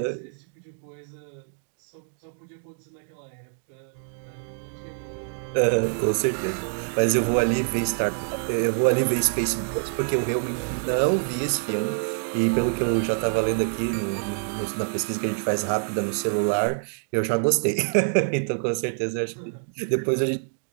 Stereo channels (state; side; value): silent; left; 61 dB below the other